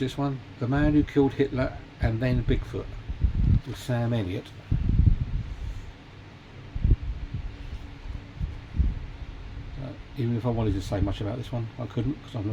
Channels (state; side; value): identical; both; correlation 1.00